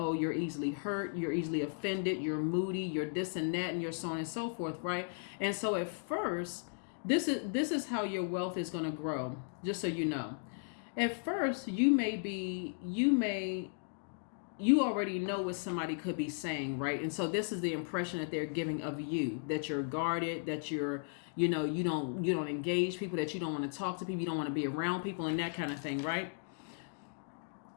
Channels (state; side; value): silent; right; digital silence